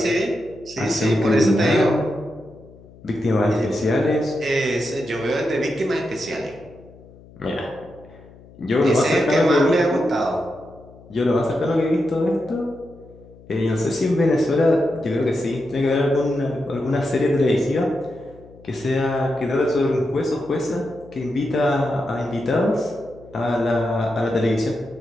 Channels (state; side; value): noise; left; hum, 23 dB below the sound